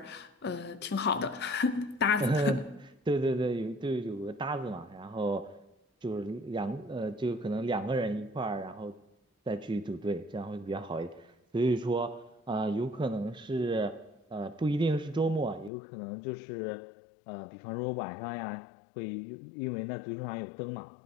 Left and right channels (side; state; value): right; drops out; at 15.7 s